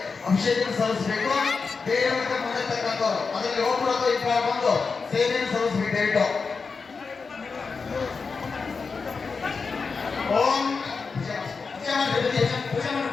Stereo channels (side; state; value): right; quieter; 4.8 dB